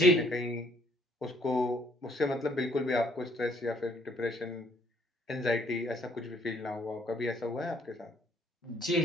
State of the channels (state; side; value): normal; both; correlation 0.64